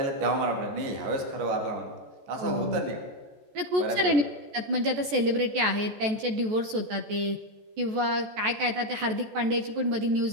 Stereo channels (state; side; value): late; left; 14 ms